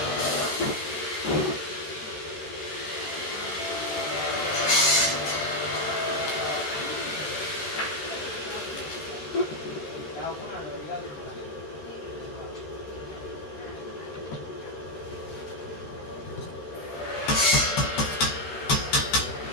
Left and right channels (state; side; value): late; right; 13 ms